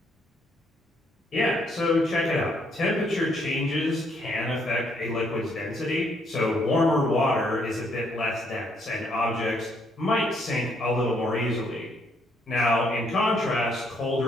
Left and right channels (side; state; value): both; normal; correlation 0.70